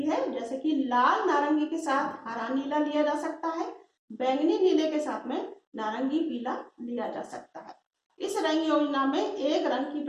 है, जैसे कि लाल नारंगी के साथ हरा नीला लिया जा सकता है, बैंगनी नीले के साथ में नारंगी पीला लिया जा सकता है। इस रंग योजना में एक रंग की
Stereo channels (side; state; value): both; identical; correlation 1.00